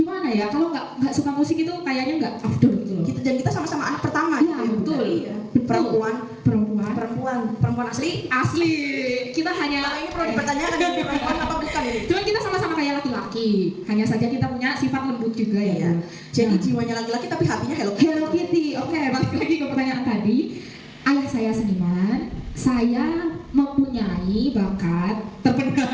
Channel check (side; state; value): both; identical; correlation 1.00